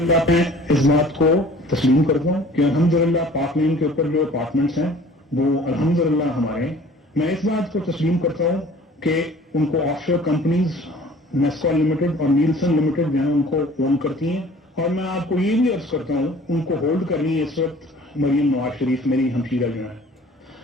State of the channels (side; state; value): both; normal; correlation 0.49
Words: पे इस बात को तस्लीम करता हूँ कि अल्हम्दुलिल्लाह पाक मीम के ऊपर जो अपार्टमेंट्स हैं वो अल्हम्दुलिल्लाह हमारे। मैं इस बात को तस्लीम करता हूँ कि उनको ऑफशोर कंपनीज नेस्कॉल लिमिटेड और नीलसन लिमिटेड जो है उनको ओन करती हैं, और मैं आपको ये भी अर्ज करता हूँ उनको होल्ड करनी है इस वक्त मरियम नवाज शरीफ मेरी हमशीरा जो है।